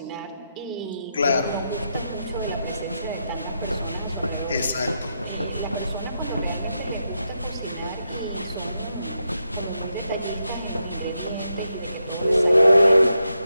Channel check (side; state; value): both; inverted; correlation -0.84